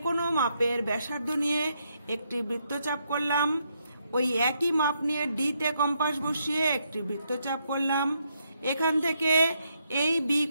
কোনো মাপের ব্যাসার্ধ নিয়ে একটি বৃত্তচাপ করলাম। ওই একই মাপ নিয়ে ডি তে কম্পাস বসিয়ে একটি বৃত্তচাপ করলাম। এখান থেকে এই বি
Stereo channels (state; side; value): inverted; both; correlation -0.77